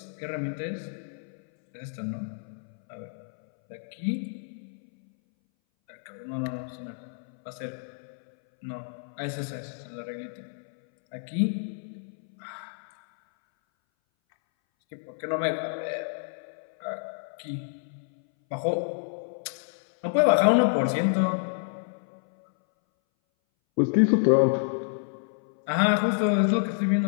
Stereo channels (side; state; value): right; silent; 59 dB below the other